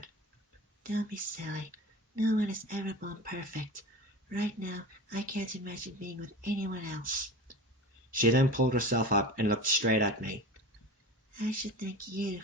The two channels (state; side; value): normal; both; correlation 0.33